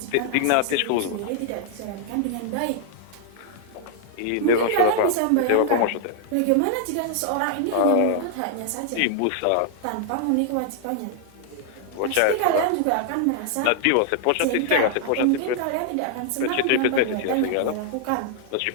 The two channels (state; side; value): different; both; correlation 0.00